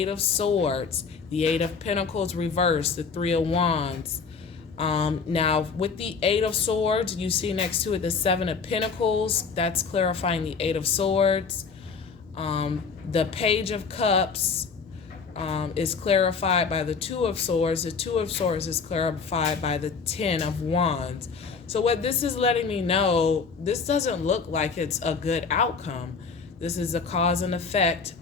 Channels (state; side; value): quieter; right; 5.3 dB